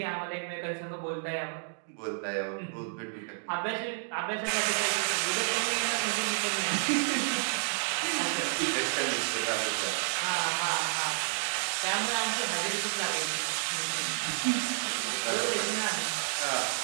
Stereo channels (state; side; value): silent; left; digital silence